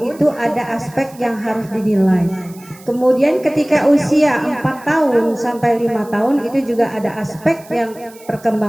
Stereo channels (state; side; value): noise; right; hiss, 23 dB below the sound